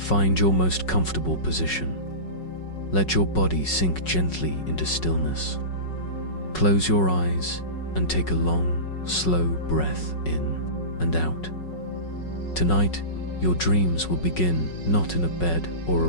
your most comfortable position. Let your body sink gently into stillness. Close your eyes and take a long, slow breath in and out. Tonight, your dreams will begin not in a bed or a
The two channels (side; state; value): right; late; 5.4 ms